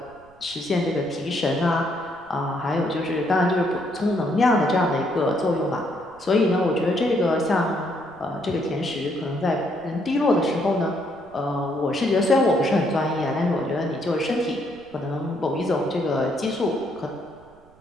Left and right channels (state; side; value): noise; right; rumble, 27 dB below the sound